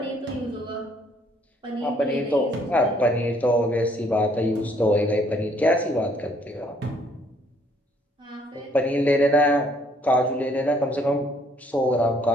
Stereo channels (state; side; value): normal; both; correlation 0.64